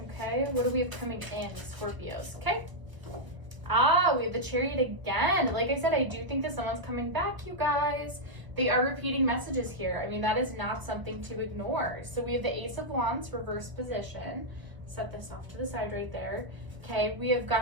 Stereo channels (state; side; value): late; left; 1.0 ms